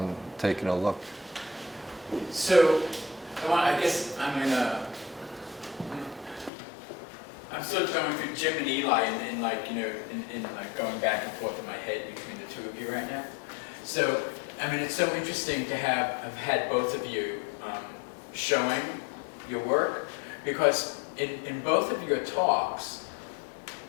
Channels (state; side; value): drops out; right; at 6.5 s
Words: taking a look. So, I guess I'm sort of going through Jim and Eli and like, you know, in like going back and forth in my head between the two of you right now. So, I mean, it's so interesting to have had both of you showing your work, because in both of your talks,